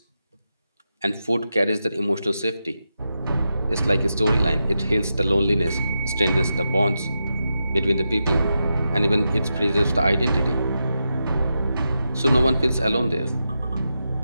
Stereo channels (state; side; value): inverted; both; correlation -0.88